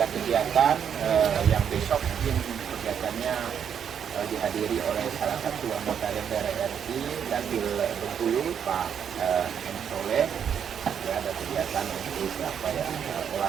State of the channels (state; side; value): quieter; left; 8.1 dB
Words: kegiatan yang besok mungkin kegiatannya dihadiri oleh salah satu anggota DPR RI Dapil Bengkulu Pak M. Soleh. Ya, ada kegiatan untuk apa ya,